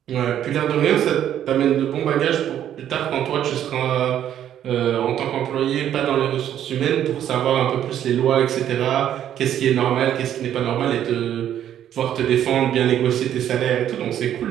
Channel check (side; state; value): left; quieter; 10.6 dB